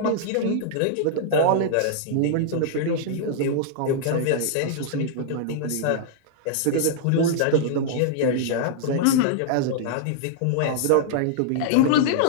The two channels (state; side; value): different; both; correlation -0.02